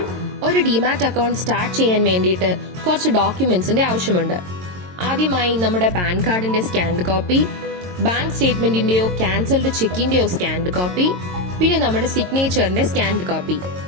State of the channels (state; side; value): late; left; 22 ms